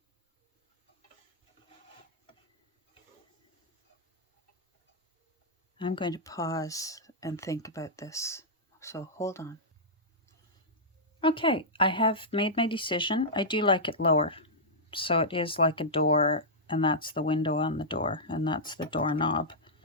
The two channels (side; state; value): both; normal; correlation -0.11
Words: I'm going to pause and think about this. So hold on. Okay, I have made my decision. I do like it lower. So it is like a door, and that's the window on the door, and that's the doorknob.